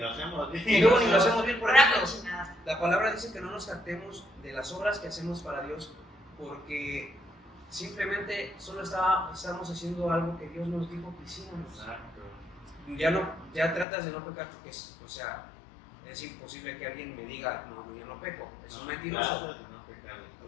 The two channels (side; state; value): right; drops out; at 13.9 s